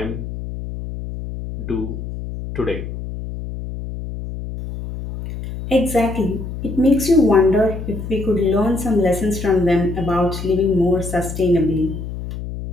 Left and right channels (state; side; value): noise; left; hum, 8 dB below the sound